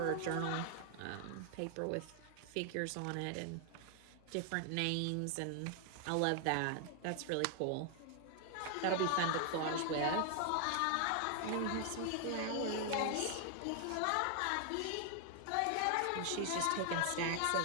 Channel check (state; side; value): different; both; correlation 0.00